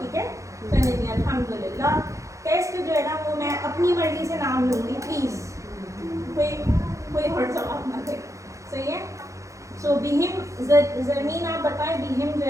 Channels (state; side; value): late; left; 0.15 ms